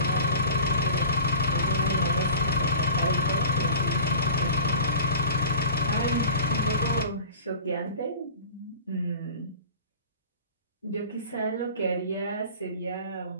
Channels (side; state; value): both; inverted; correlation -0.41